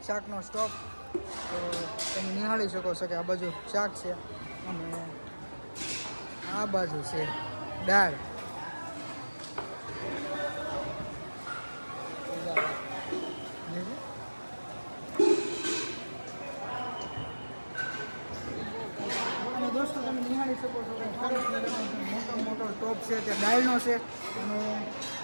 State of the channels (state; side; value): inverted; both; correlation -1.00